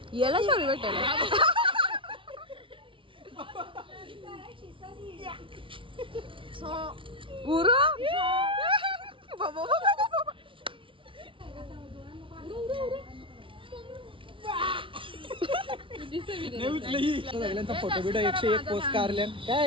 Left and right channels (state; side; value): late; left; 0.25 ms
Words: याला शोरी भेटेल. गुरु सगळ्यांचा फोटो बिटो 101 पोस्ट काढल्या.